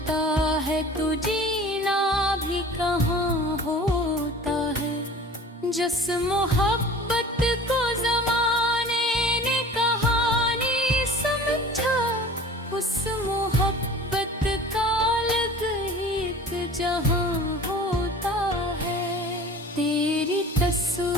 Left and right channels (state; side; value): normal; both; correlation 0.42